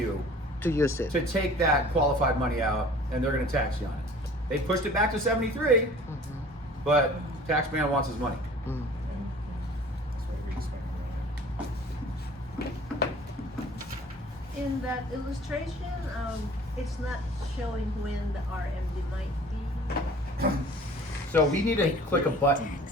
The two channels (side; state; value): both; normal; correlation 0.47